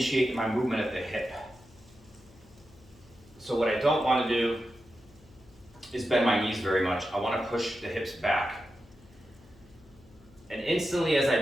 my movement at the hip. So what I don't want to do is bend my knees very much. I want to push the hips back. And instantly as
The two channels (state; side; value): noise; left; hum, 26 dB below the sound